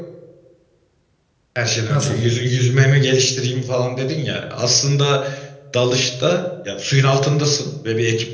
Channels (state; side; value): identical; both; correlation 1.00